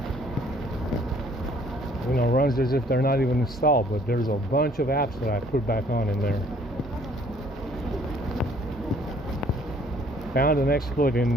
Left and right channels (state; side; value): normal; both; correlation 0.60